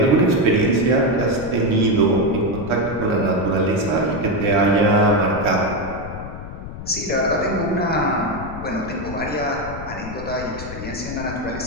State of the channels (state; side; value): noise; left; rumble, 11 dB below the sound